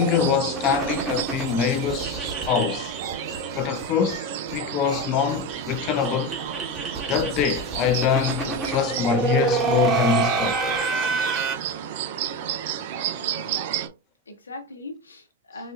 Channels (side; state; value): both; normal; correlation 0.18